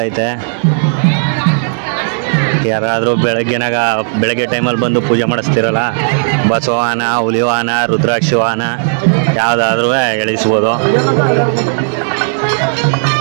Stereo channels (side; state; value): left; silent; digital silence